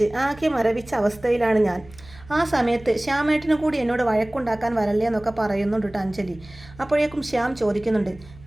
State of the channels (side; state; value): right; noise; hum, 21 dB below the sound